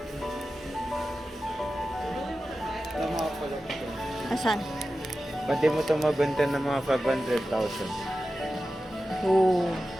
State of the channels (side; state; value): both; normal; correlation 0.93